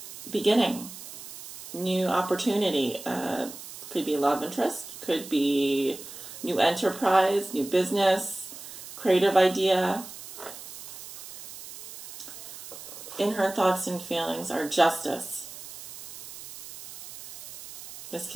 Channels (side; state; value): right; noise; hiss, 12 dB below the sound